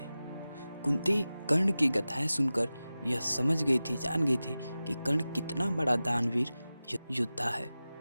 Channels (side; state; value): both; inverted; correlation -0.95